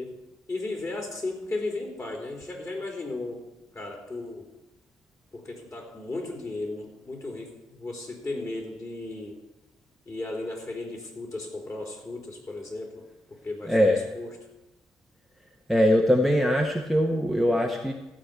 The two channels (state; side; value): normal; both; correlation 0.88